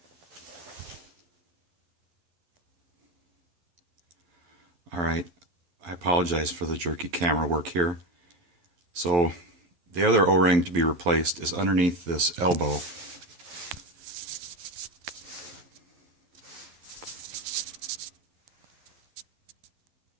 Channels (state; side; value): late; left; 11 ms